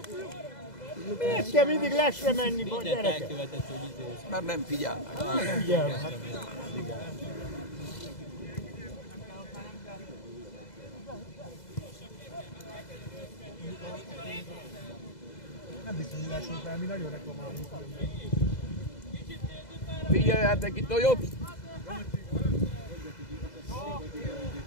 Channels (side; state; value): right; late; 2.0 ms